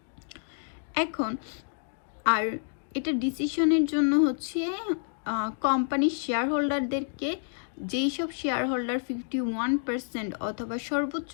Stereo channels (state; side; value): silent; right; digital silence